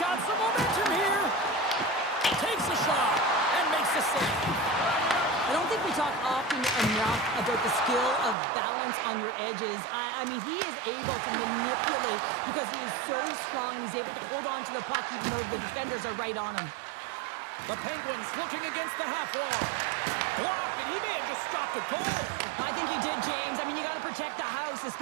some momentum here. Takes a shot and makes a save. I don't think we talk often enough about the skill of balance on your edges. I mean, he is able to manipulate because he is so strong. He's able to hold on to the puck even though the defenders are right on him. The Penguins looking against the half wall. Blocked, and he may have just stopped a goal. I think he did, James. I mean, you got to protect the house,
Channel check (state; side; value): drops out; left; at 8.3 s